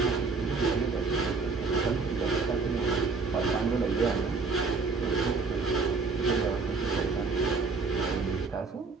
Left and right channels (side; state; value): left; quieter; 4.4 dB